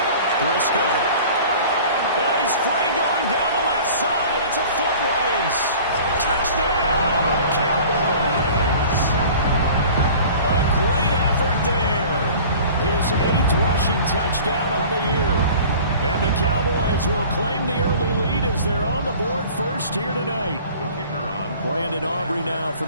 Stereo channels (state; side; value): inverted; both; correlation -0.44